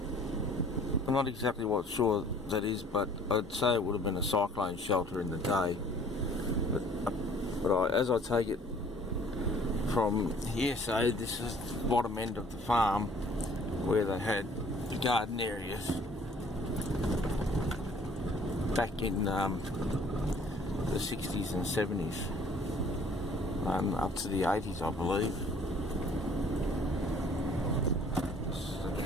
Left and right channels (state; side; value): normal; both; correlation 0.55